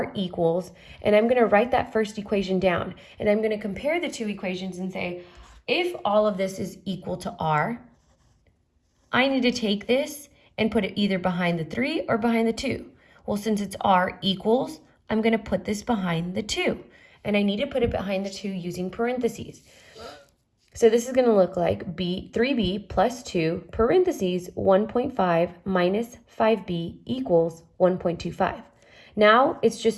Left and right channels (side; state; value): both; identical; correlation 1.00